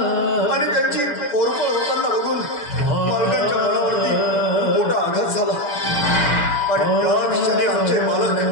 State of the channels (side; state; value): right; late; 6.9 ms